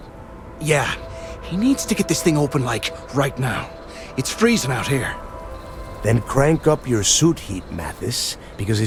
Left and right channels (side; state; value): both; identical; correlation 1.00